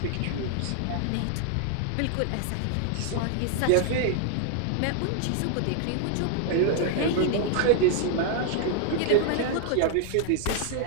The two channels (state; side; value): different; both; correlation 0.00